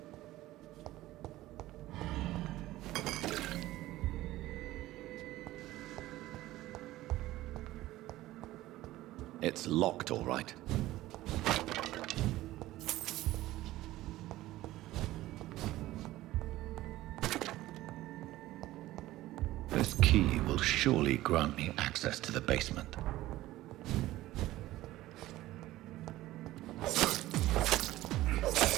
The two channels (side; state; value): left; quieter; 16.2 dB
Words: It's locked, all right. This key will surely grant me access to the basement.